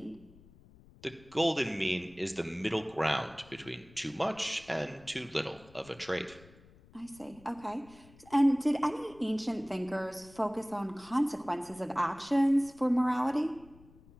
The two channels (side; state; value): left; noise; rumble, 24 dB below the sound